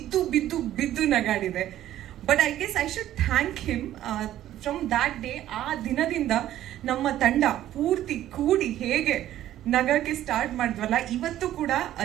ಬಿದ್ದು ನಗಾಡಿದೆ. But I guess I should thank him. From that day, ಆ ದಿನದಿಂದ ನಮ್ಮ ತಂಡ ಪೂರ್ತಿ ಕೂಡಿ ಹೇಗೆ ನಗಕ್ಕೆ ಸ್ಟಾರ್ಟ್ ಮಾಡಿದ್ವಲ್ಲ, ಇವತ್ತು ಕೂಡ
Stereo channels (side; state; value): left; quieter; 12.8 dB